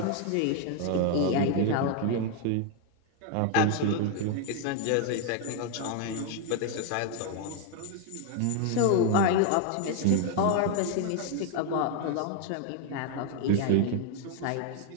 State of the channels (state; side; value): different; both; correlation 0.01